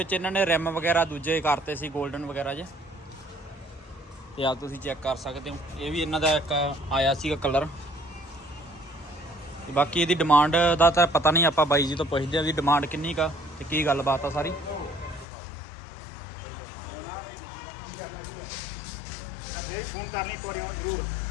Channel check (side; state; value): right; drops out; at 15.2 s